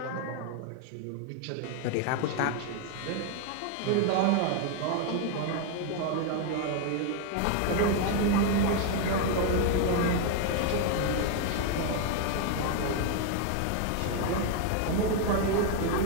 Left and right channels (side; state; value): both; different; correlation 0.01